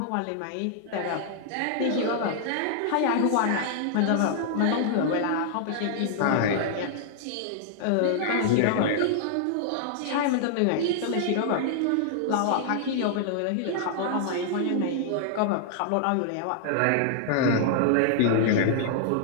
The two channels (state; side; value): different; both; correlation -0.01